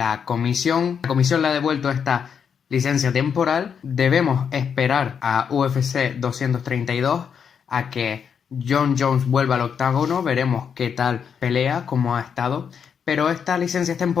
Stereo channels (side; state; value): right; quieter; 7.1 dB